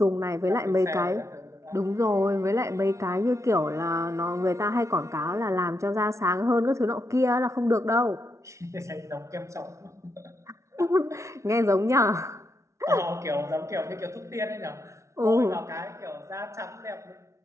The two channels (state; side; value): late; left; 0.14 ms